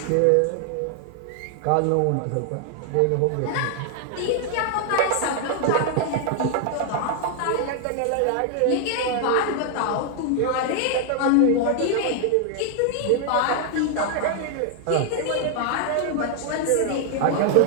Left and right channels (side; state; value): both; different; correlation 0.00